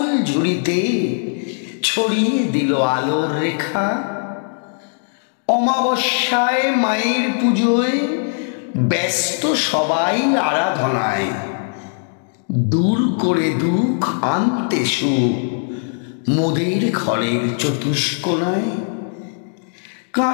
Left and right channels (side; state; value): right; silent; 66 dB below the other